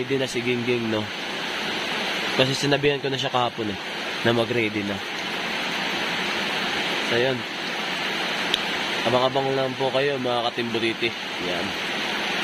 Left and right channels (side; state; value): both; identical; correlation 1.00